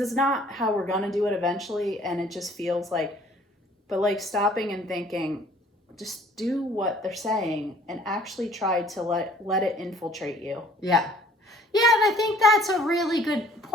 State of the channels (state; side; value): normal; both; correlation 0.55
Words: not how we're going to do it eventually. And it just feels like, but like stopping and thinking, just do what they're saying and actually try to let it infiltrate you. Yeah. Yeah, and I think that's a really good